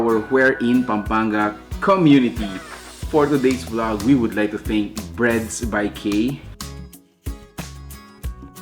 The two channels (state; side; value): identical; both; correlation 1.00